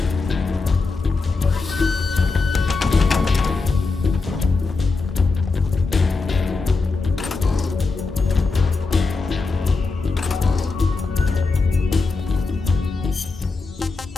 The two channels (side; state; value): right; quieter; 4.0 dB